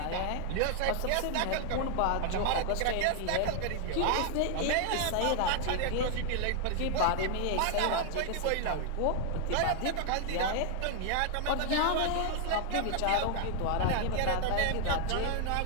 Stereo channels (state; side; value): different; both; correlation 0.00